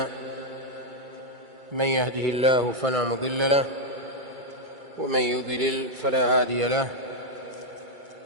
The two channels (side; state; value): left; late; 2.3 ms